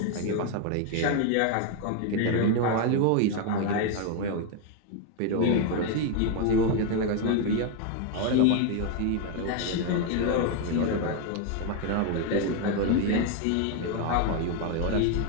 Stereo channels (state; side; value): different; both; correlation 0.01